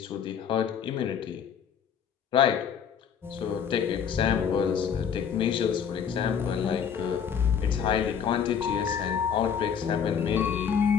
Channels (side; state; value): right; quieter; 7.6 dB